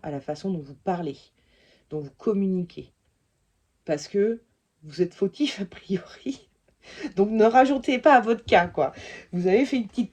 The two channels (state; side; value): identical; both; correlation 1.00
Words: à la façon dont vous parlez, dont vous communiquez, parce que vous êtes fautif a priori. Donc ne rajoutez pas à votre cas, quoi. Vous avez fait une petite